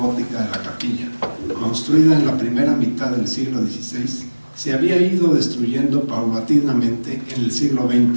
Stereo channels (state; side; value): inverted; both; correlation -1.00